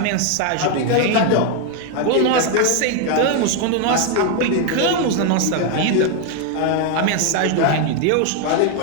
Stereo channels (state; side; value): different; both; correlation 0.01